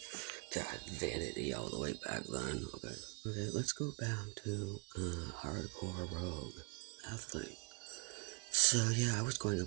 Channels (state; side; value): quieter; left; 36.7 dB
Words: God, vanity all the way back then. Okay, let's go back to hardcore rogue athlete. So yeah, I was going